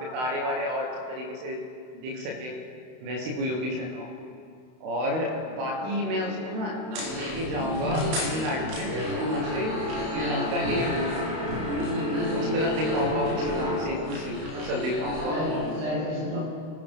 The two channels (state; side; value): late; left; 31 ms